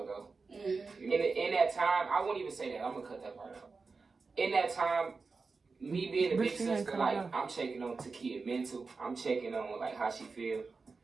ago. In that time, I won't even say that. I'm gonna cut that part out. In that time, me being a big sister, like, I'm checking on Takia mental. I'm checking on, like, how she feel.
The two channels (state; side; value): quieter; left; 4.4 dB